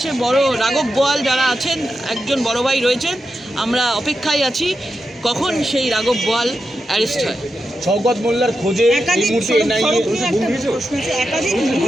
বড় রাঘব বোয়াল যারা আছেন, একজন বড় ভাই রয়েছেন, আমরা অপেক্ষায় আছি কখন সেই রাঘব বোয়াল অ্যারেস্ট হয়। শওকত মোল্লার খোঁজে এই মুহূর্তে একাধিক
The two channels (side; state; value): both; normal; correlation 0.88